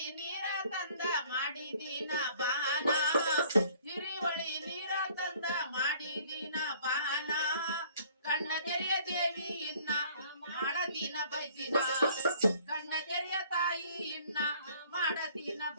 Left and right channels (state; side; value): inverted; both; correlation -0.56